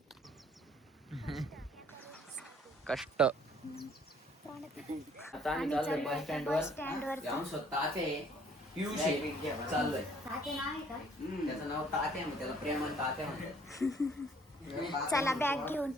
कष्ट. आम्ही चाललोय आता बस स्टँड वर. चाललोय. त्याचं नाव तात्या, त्याला प्रेमान तात्या म्हणतात. चला बॅग घेऊन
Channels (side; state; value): both; normal; correlation 0.60